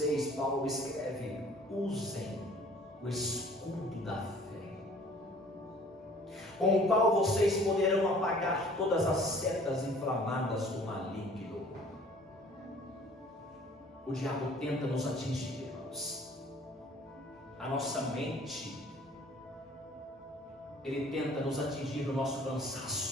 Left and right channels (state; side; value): normal; both; correlation 0.53